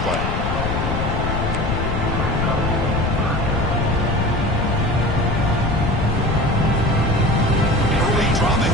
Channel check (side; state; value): left; noise; rumble, 1 dB below the sound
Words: play. Early drama